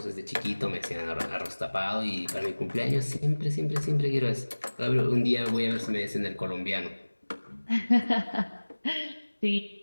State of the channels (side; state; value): both; inverted; correlation -1.00